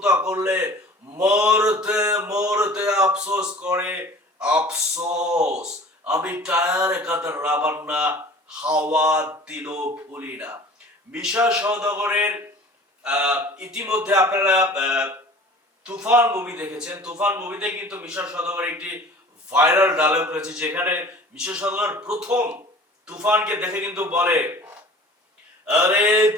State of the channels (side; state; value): both; normal; correlation 0.45